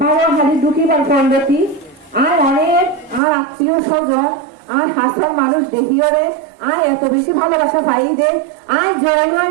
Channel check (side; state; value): left; drops out; at 3.2 s